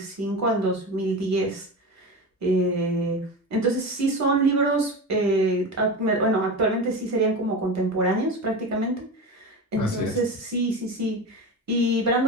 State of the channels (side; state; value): both; normal; correlation 0.25